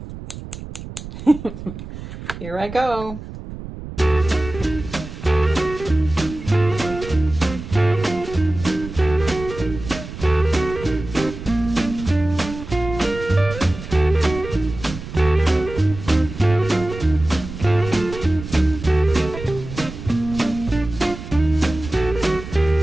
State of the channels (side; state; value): right; noise; rumble, 11 dB below the sound